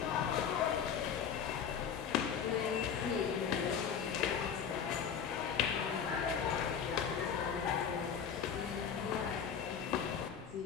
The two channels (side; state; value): right; quieter; 7.5 dB